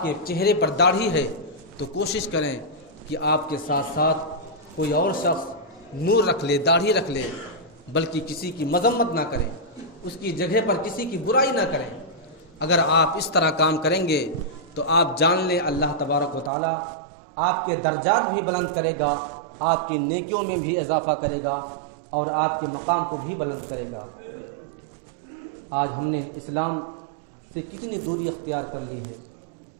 کے چہرے پر داڑھی ہے، تو کوشش کریں کہ آپ کے ساتھ ساتھ کوئی اور شخص نور رکھ لے، داڑھی رکھ لے، بلکہ کسی کی مذمت نہ کریں، اس کی جگہ پر کسی کی برائی نہ کریں. اگر آپ اس طرح کام کریں گے تو آپ جان لیں اللہ تبارک و تعالیٰ آپ کے درجات بھی بلند کرے گا، آپ کی نیکیوں میں بھی اضافہ کرے گا اور آپ کے مقام کو بھی بلند کرے گا. آج ہم نے اسلام سے کتنی دوری اختیار کر لی ہے.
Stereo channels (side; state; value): left; drops out; at 16.5 s